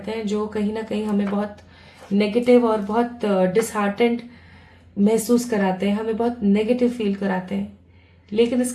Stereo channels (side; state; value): both; identical; correlation 1.00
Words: हैं जो कहीं ना कहीं हमें बहुत नेगेटिव और बहुत डिसहार्टेंड महसूस कराते हैं, हमें बहुत नेगेटिव फील कराते हैं। लेकिन